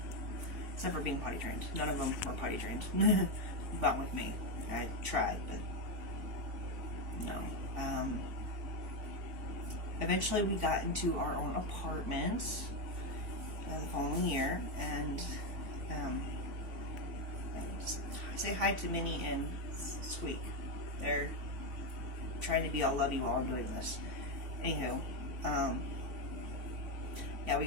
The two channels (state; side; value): late; left; 3.5 ms